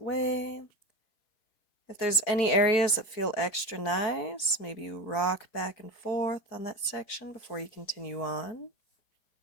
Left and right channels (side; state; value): right; late; 4.5 ms